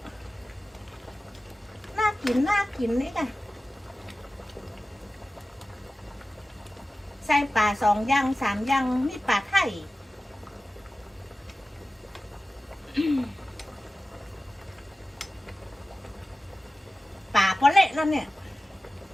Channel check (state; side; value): normal; both; correlation 0.95